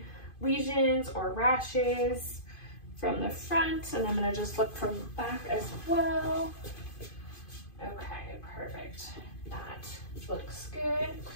lesions or rashes from the front, and I'm going to just look from the back as well. Okay, perfect. That looks good.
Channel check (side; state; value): right; late; 2.5 ms